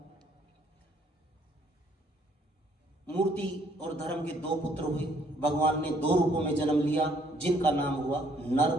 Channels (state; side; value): normal; both; correlation 0.65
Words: मूर्ति और धर्म के दो पुत्र हुए। भगवान ने दो रूपों में जन्म लिया, जिनका नाम हुआ नर